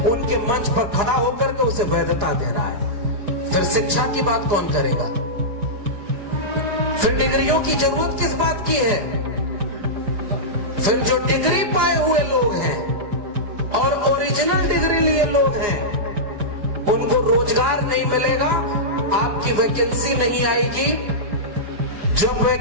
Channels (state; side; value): late; left; 4.9 ms